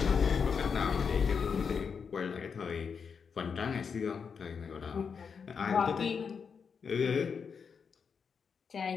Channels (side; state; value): right; quieter; 6.1 dB